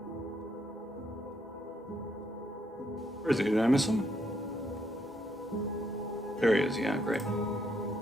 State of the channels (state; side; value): normal; both; correlation 0.74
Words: Where is he? Did I miss him? There he is, yeah, great.